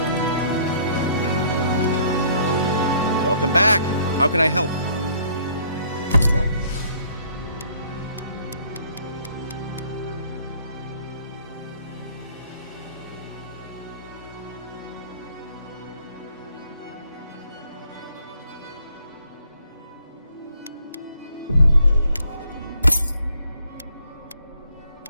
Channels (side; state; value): both; inverted; correlation -0.61